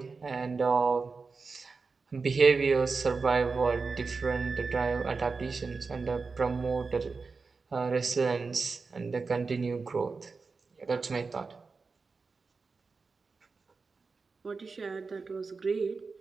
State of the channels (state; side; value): quieter; left; 4.5 dB